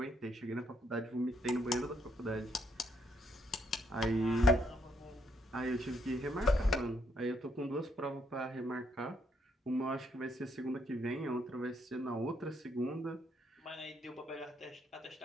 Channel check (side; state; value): both; normal; correlation 0.71